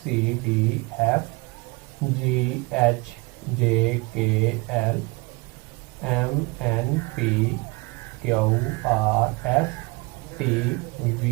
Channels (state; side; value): quieter; left; 26.2 dB